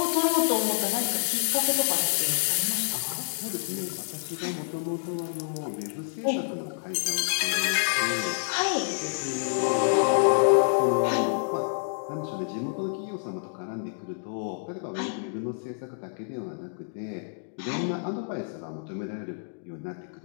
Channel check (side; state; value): right; silent; digital silence